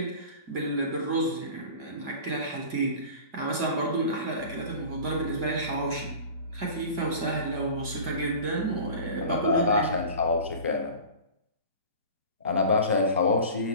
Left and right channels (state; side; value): late; left; 2.0 ms